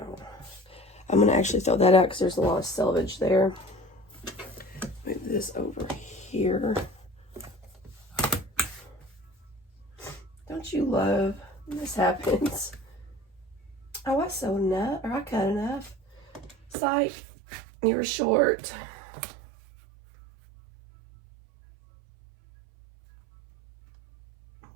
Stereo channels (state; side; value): drops out; left; at 16.8 s